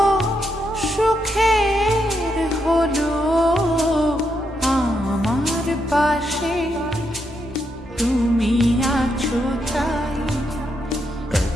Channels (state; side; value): normal; both; correlation 0.80